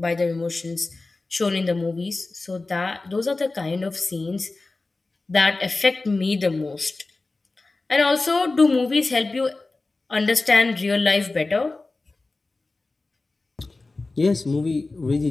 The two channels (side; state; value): right; quieter; 3.4 dB